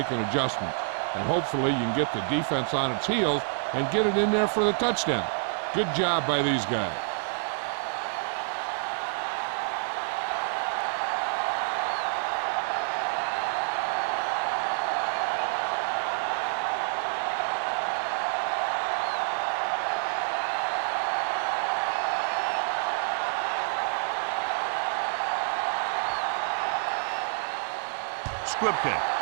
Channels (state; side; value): silent; left; digital silence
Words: adjustments. And hopefully you can get the defense on its heels and get it in there for the touchdown. Good job by these guys. Squib kick.